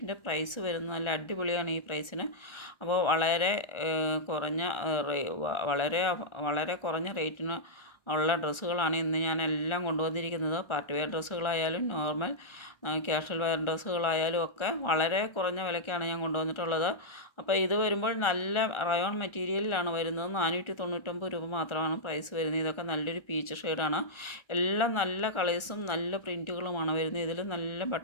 പ്രൈസ് വരുന്നത്. നല്ല അടിപൊളിയാണ് ഈ പ്രൈസിന്. അപ്പോൾ വളരെ കുറഞ്ഞ റേറ്റിന് ഉള്ള ഡ്രസ്സുകളാണ് ഇന്ന് ഞാൻ എല്ലാം കൊണ്ടുവന്നിരിക്കുന്നത്. പാർട്ടി വെയർ ഡ്രസ്സുകളായാലും നോർമൽ ക്യാഷ്വൽ വെയർ ഡ്രസ്സുകളായാലും ഒക്കെ വളരെ കുറഞ്ഞ വിലയ്ക്കാണ് ഞാൻ കൊണ്ടുവന്നിട്ടുള്ളത്. അപ്പോൾ ഇത് വരുമ്പോൾ നല്ല റയോൺ മെറ്റീരിയലിലാണ് വരുന്നത്. 499 രൂപ മാത്രമാണ് പ്രൈസ് വരുന്നത്. ഇതൊക്കെ നല്ലൊരു പീച്ച് ഷെയ്ഡാണ്. എല്ലാം നല്ല കളേഴ്സും നല്ല പ്രിൻറ്റുകളുമാണ് വരുന്നത്. ഇതിൽ നല്ല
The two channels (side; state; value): right; late; 1.4 ms